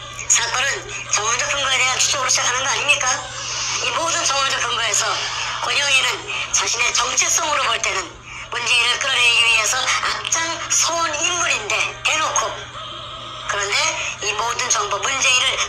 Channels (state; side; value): identical; both; correlation 1.00